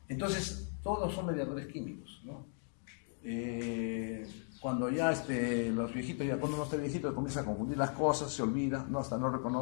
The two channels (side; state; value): right; silent; 53 dB below the other